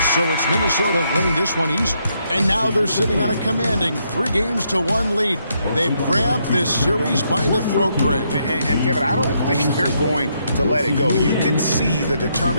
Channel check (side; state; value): both; inverted; correlation -0.76